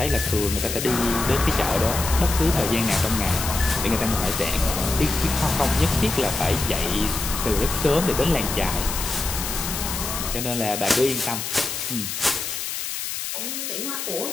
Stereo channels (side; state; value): left; noise; hiss, 4 dB below the sound